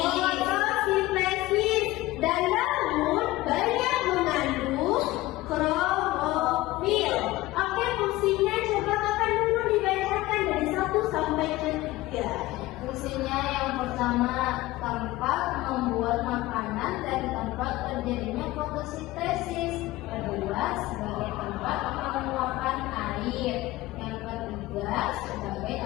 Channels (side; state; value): right; quieter; 18.1 dB